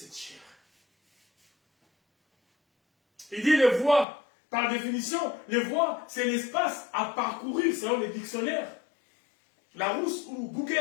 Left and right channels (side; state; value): right; drops out; at 4.0 s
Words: chair. Il dit les voies, par définition, les voies, c'est l'espace à parcourir selon les dictionnaires. Larousse ou